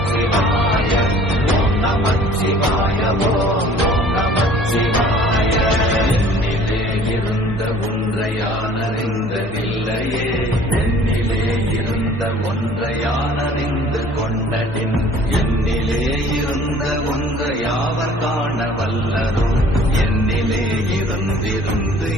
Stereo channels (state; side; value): normal; both; correlation 0.51